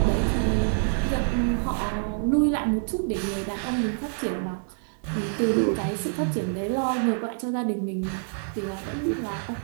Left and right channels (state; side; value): silent; left; digital silence